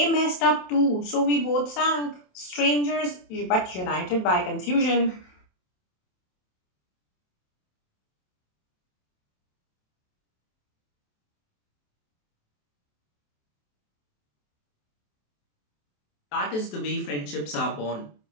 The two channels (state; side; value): late; right; 27 ms